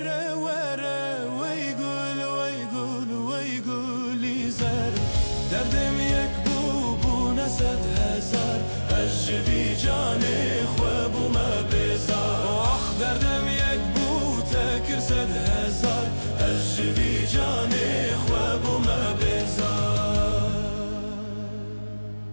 وره وی گلی زر دردم یک بو نصد هزار از جوی جانه خواب ما بیزار دردم یک بو تکر صد هزار از جوی جانه خواب ما بیزار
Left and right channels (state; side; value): inverted; both; correlation -1.00